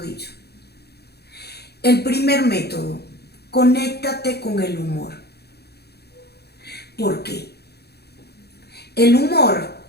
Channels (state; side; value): late; right; 0.47 ms